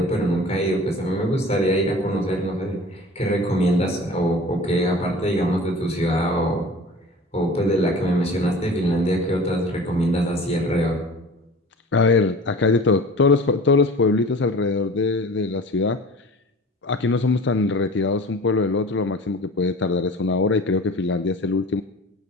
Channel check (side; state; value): both; normal; correlation 0.41